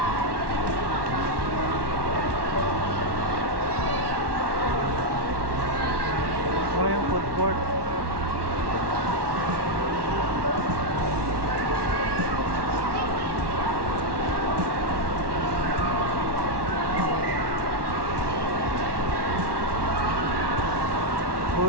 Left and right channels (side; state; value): left; late; 1.2 ms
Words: Wala yung food court.